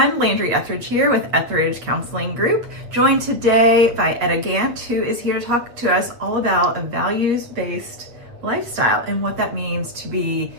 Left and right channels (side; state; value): left; late; 8.2 ms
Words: Landry Etheridge here with Etheridge Counseling Group, joined today by Etta Gant, who is here to talk to us all about a values-based lifestyle and what that means to be